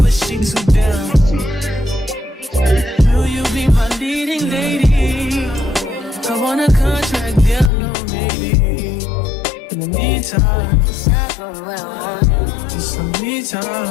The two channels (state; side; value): drops out; right; at 7.7 s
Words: she too down. Will you be my leading lady? I want a contract, down low, maybe. In the meantime, it's some me